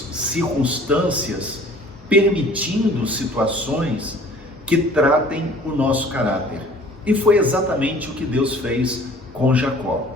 circunstâncias, permitindo situações que tratem o nosso caráter. E foi exatamente o que Deus fez com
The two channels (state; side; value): normal; both; correlation 0.50